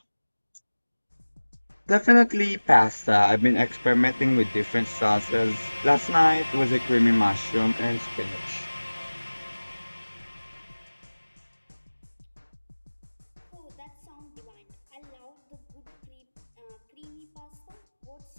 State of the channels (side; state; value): both; inverted; correlation -1.00